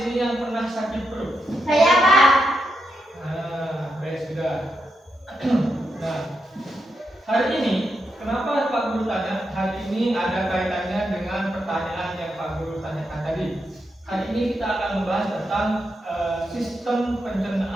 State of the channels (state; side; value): normal; both; correlation 0.84